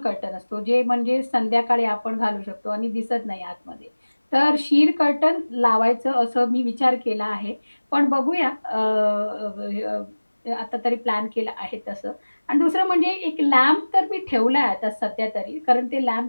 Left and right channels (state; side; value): inverted; both; correlation -1.00